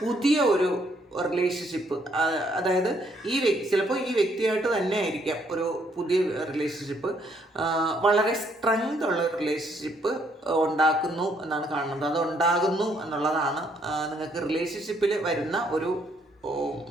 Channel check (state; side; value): normal; both; correlation 0.69